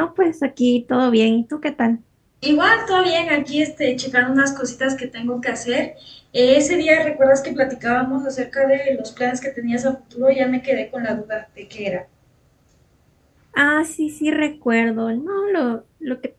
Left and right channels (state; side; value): identical; both; correlation 1.00